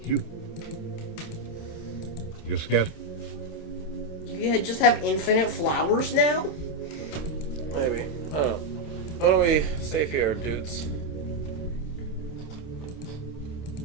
You scatter. You just have infinite flowers now? Maybe. I don't know. Why don't we save here, dudes?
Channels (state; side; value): late; right; 27 ms